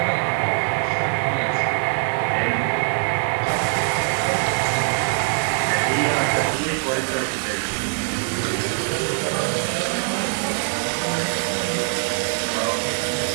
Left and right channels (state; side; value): silent; left; 57 dB below the other